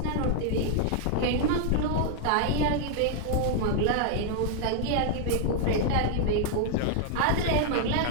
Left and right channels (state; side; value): different; both; correlation -0.01